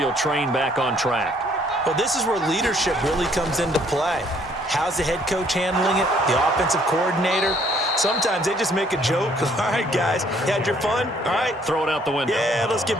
train back on track? Well, this is where leadership really comes into play. How's the head coach handling it? The offensive coordinator? Sometimes they just make a joke. All right, guys, you had your fun? All right. Throw it out the window. Yeah, let's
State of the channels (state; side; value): normal; both; correlation 0.64